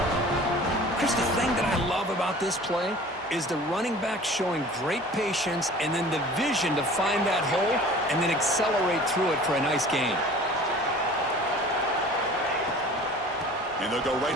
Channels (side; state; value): both; normal; correlation 0.44